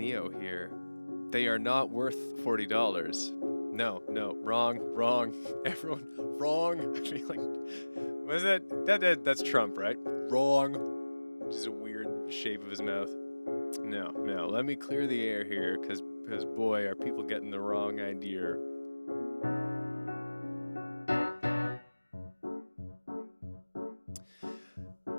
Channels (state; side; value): inverted; both; correlation -1.00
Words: here. They are not worth $40. No, wrong. Everyone, wrong. I feel like, what is that? That's Trump, right? Wrong. Just a weird shape of his mouth. No. Let me clear the air here, because boy, are people getting the wrong idea.